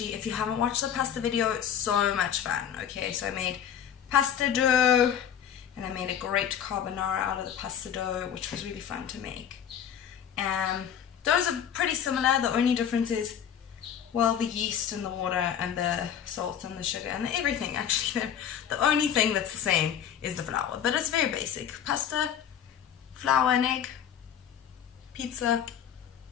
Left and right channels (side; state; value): right; quieter; 9.0 dB